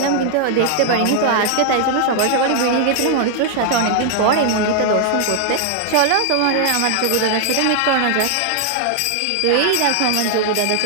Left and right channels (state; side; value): different; both; correlation 0.00